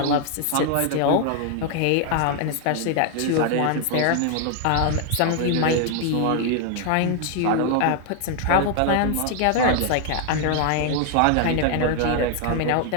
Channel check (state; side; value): different; both; correlation 0.00